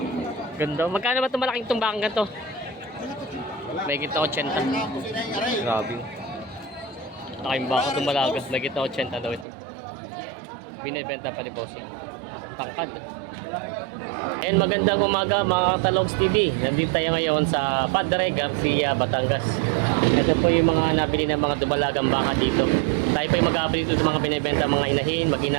ganda. Magkano ba itong malaking tumbang ganito? May kita 80. Grabe. Laking baka dumalaga. May kita 80 daw ito. Binibenta pa ni Bossing. Tangkad. And magandang umaga mga Talogs TV. Nandito tayo ngayon sa Padre Garcia, Batangas. Ito po yung mga nabili ng mga dumalagang baka dito. Tayo po yung mag-update dito ng mga binibenta mga inahin,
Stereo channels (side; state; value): left; drops out; at 9.5 s